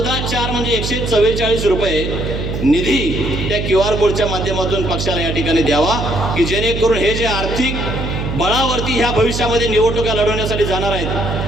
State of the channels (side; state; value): right; noise; hum, 3 dB below the sound